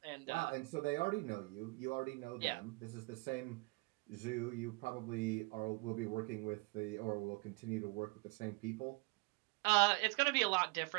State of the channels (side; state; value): left; quieter; 27.6 dB